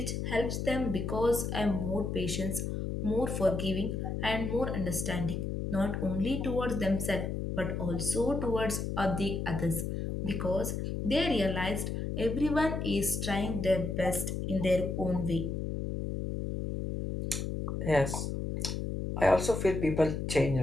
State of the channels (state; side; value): noise; left; hum, 3 dB below the sound